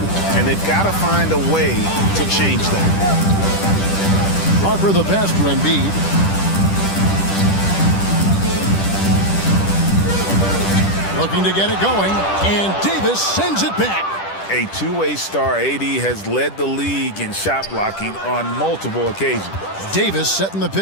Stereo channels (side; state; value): right; late; 10 ms